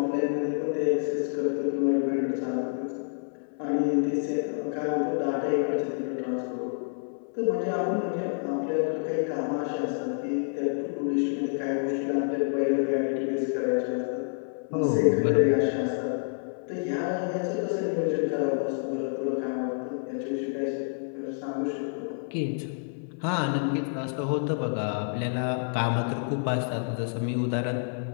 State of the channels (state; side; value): silent; right; 59 dB below the other